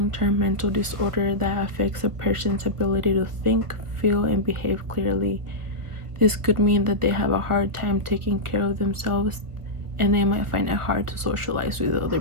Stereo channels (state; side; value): late; left; 1.7 ms